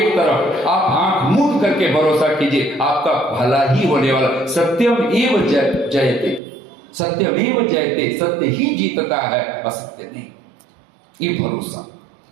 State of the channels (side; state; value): left; drops out; at 6.4 s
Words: तरफ, आप आंख मूंद करके भरोसा कीजिए, आपका भला ही होने वाला। सत्यम एव जयते, सत्यम एव जयते, सत्य ही जीतता है, असत्य नहीं, ये भरोसा।